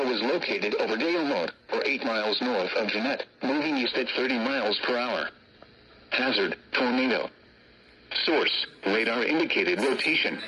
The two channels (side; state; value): both; identical; correlation 1.00